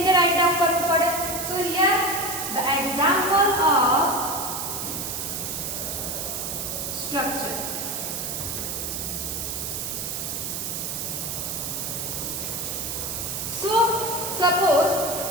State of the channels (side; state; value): right; noise; hiss, 3 dB below the sound